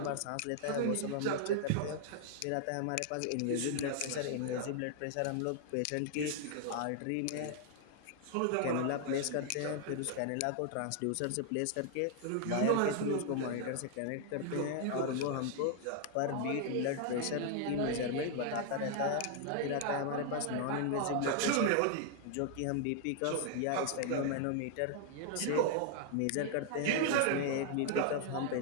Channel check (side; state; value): both; different; correlation 0.00